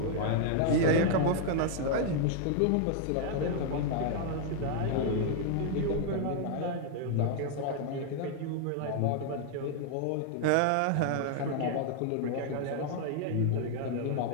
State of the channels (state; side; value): different; both; correlation 0.00